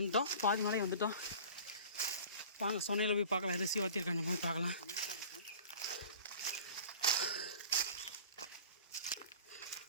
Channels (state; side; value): inverted; both; correlation -0.42